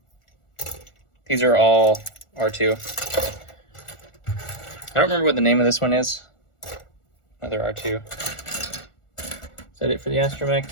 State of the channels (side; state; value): right; late; 1.4 ms